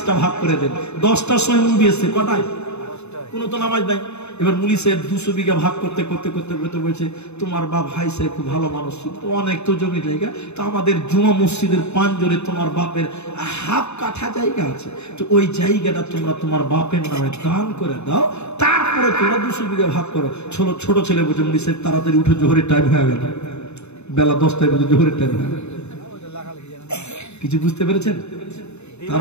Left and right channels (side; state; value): right; late; 0.81 ms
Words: ভাগ করে দেন। 10টার সময় মুভি এসছে, কটায়? কোনো তো নামাজ নাই। এবার মুলি সাহেব 200 বিঘা ভাগ করতে করতে করতে করতে বলছে তোমার বাপ হাই সাহেব খুব ভালো মানুষ ছিল, তো অনেক তো জমি জায়গা, তো আমাদের জুমা মসজিদের পাঞ্জরে তোমার বাপের হাফ কাঠা জায়গা আছে, তো ওই জায়গাটা তোমরা তোমার বাপের নামে দান করে দাও, তারপরে তোমরা 200 বিঘা ভাগ করো। ছোট ছেলে বলছে মুলি সাহেব তাড়াতাড়ি উঠে জোহরের টাইম হয়ে গেল, বেলা 10টায় বলছে জোহরের টাইম হয়ে গেল। কিছু বুঝতে পেরেছেন?